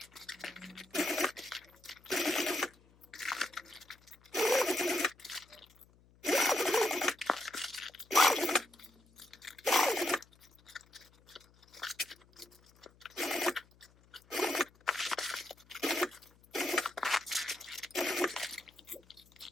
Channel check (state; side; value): noise; left; hum, 29 dB below the sound